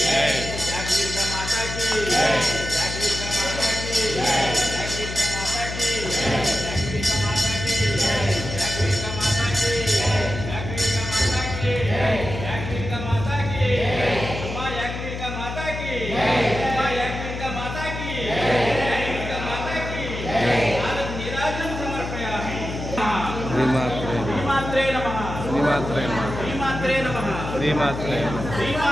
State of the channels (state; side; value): noise; left; hum, 7 dB below the sound